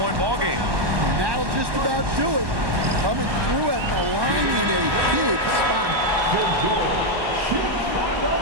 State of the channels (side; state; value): left; late; 1.1 ms